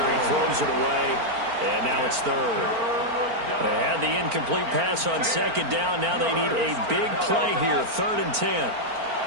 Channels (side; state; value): left; late; 4.4 ms